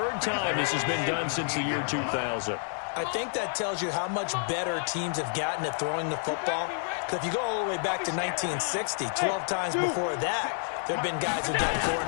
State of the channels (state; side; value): silent; right; 59 dB below the other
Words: time this has been done since the year 2000. I think that tells you how much better teams have gotten at throwing the football. Because if you go all the way back to 1960, 12 times before that, there have been guys who've gotten 4